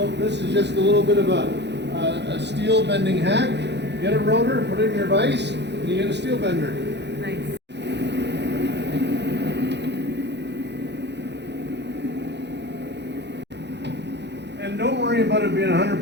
this is just a little bit of a steel bending hack. Get a rotor, put it in your vise, and you get a steel bender. Nice. And don't worry about it being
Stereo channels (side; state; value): left; late; 0.50 ms